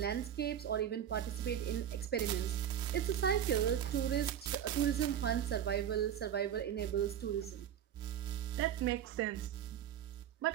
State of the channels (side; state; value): left; quieter; 9.9 dB